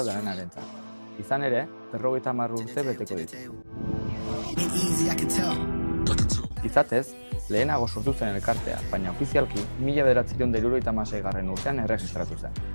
danenarentzat. Izan ere, 50 urte beteko ditu. Izatez, lehenago sortu zen elkartea, baina ofizialki 1976. urtean erregistratu zen.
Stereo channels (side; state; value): both; inverted; correlation -1.00